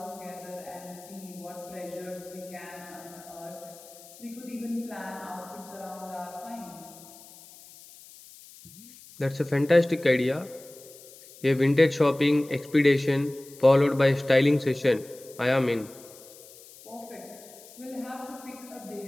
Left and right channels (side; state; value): left; noise; hiss, 20 dB below the sound